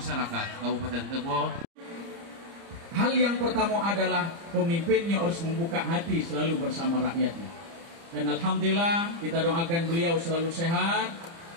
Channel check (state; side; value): late; left; 30 ms